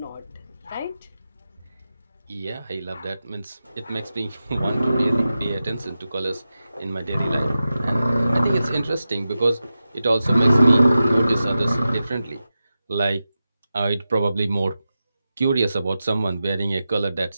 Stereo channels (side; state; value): both; inverted; correlation -0.92